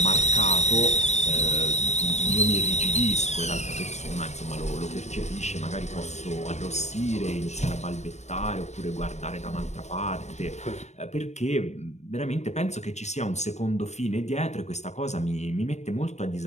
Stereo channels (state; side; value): late; right; 0.33 ms